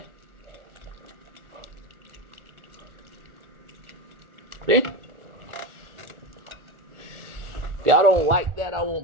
See? If y'all don't like that, I won't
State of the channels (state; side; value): late; left; 1.4 ms